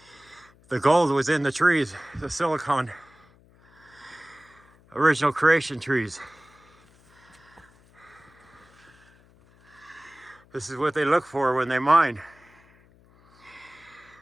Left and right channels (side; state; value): left; noise; hum, 29 dB below the sound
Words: the gold was in the trees, the silicon, original creation trees. This is what they look for when they mine.